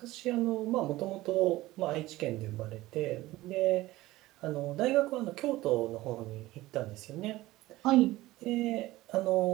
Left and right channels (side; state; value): left; quieter; 17.6 dB